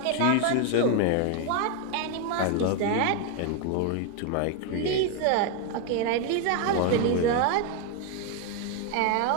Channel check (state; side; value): different; both; correlation 0.01